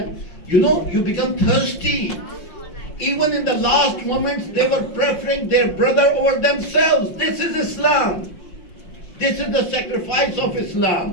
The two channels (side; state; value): right; late; 5.6 ms